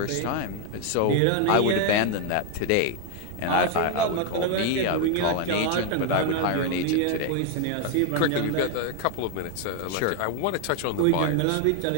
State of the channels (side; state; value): both; different; correlation 0.01